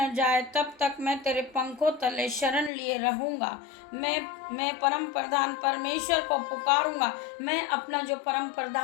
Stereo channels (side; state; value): right; drops out; at 2.7 s